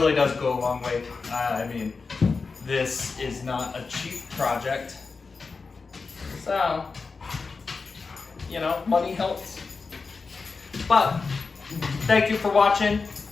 does go a long way. I mean, this is not a cheap project. So, you know, money helps. But, thank you for watching.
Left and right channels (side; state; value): right; quieter; 4.5 dB